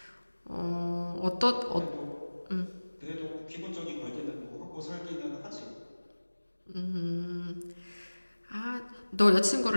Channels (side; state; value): both; inverted; correlation -1.00